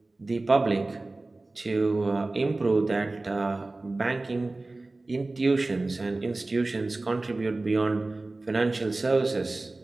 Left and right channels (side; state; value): left; quieter; 3.1 dB